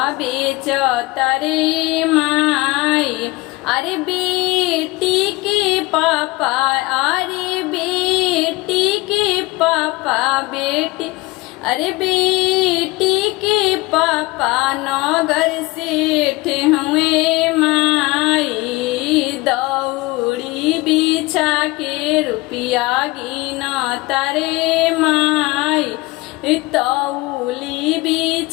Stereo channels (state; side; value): quieter; right; 22.2 dB